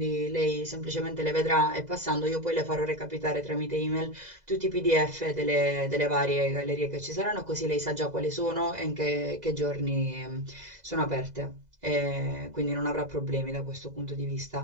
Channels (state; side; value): late; left; 2.0 ms